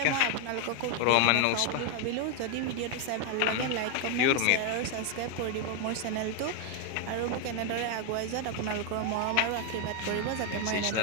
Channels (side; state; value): both; different; correlation 0.01